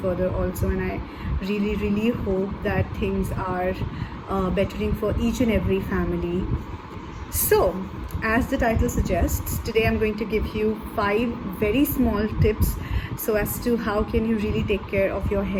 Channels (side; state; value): both; identical; correlation 1.00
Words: further also. And I really hope that things are bettering for each and every family. So, as the title suggests, today I'm going to give you 5 very small tips so as to how can you really take care of your